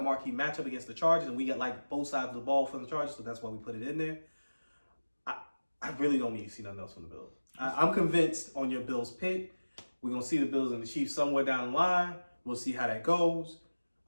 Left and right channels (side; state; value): both; inverted; correlation -1.00